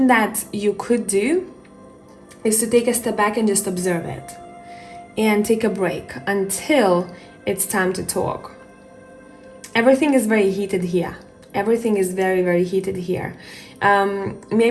that you could do is to take a step back and just observe it and take a break until it's time to talk. Everything is very heated here. Everything is very, very heated here.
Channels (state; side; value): identical; both; correlation 1.00